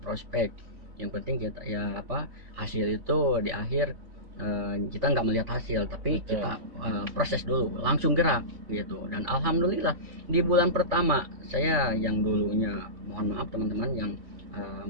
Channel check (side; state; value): left; late; 3.5 ms